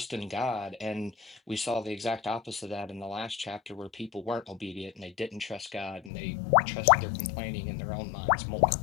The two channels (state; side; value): drops out; right; at 6.1 s